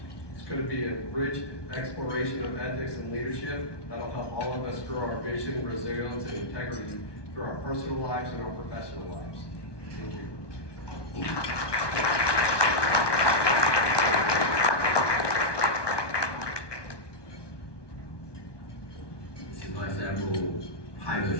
it's going to be a rich exploration of ethics and leadership that'll help all of us grow our vision, resilience, and integrity through our personal lives and our professional lives. Thank you. This is Vice Admiral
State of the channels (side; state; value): right; late; 1.2 ms